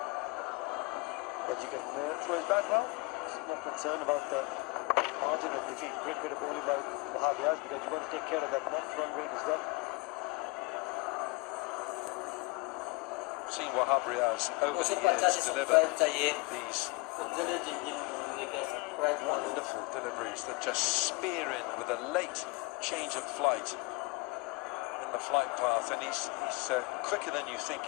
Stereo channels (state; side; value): quieter; right; 25.9 dB